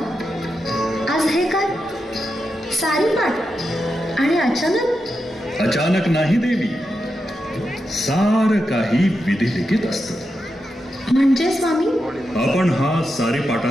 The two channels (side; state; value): both; normal; correlation 0.87